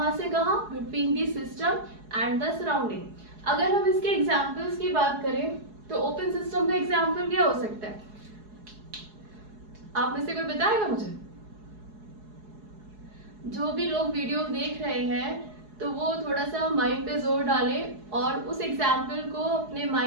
से कहां, between the system and the surrounding. अगर हम इसके एग्जांपल्स की बात करें तो ओपन सिस्टम का एग्जांपल क्या हो सकता है, आप में से कोई बताएगा मुझे? जो भी लोग वीडियो देख रहे हैं तो वो थोड़ा सा माइंड पे जोर डालें और उस एग्जाम्पल को अपने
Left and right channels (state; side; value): late; left; 4.7 ms